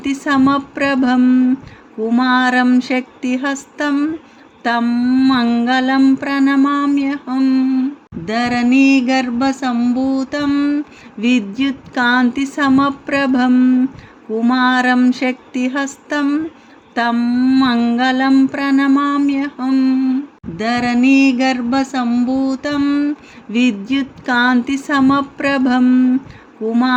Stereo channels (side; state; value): both; identical; correlation 1.00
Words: कुमारं शक्तिहस्तं तं मङ्गलं प्रणमाम्यहम् धरणीगर्भसम्भूतं विद्युत्कान्तिसमप्रभं कुमारं शक्तिहस्तं तं मङ्गलं प्रणमाम्यहम् धरणीगर्भसम्भूतं विद्युत्कान्तिसमप्रभं